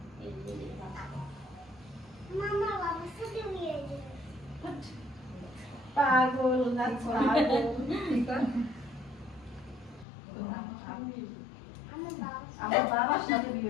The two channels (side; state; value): right; drops out; at 10.1 s